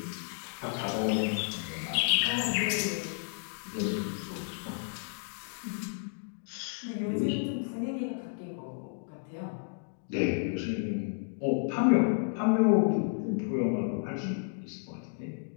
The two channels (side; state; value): right; silent; digital silence